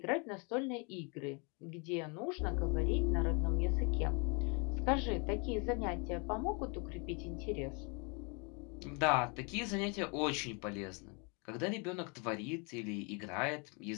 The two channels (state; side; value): quieter; right; 33.4 dB